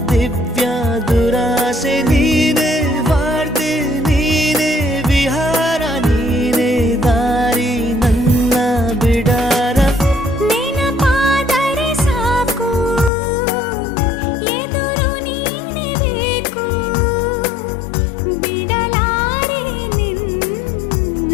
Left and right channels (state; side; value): drops out; right; at 13.1 s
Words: ದಿವ್ಯ ದುರಾಸೆ ನೀನೇ ವಾರ್ತೆ ನೀನೇ ವಿಹಾರ ನೀನೇ ದಾರಿ ನನ್ನ ಬಿಡಾರ. ನೆನಪಾದರೆ ಸಾಕು ಎದುರು ನೀನೇ ಬೇಕು. ಬಿಡಲಾರೆ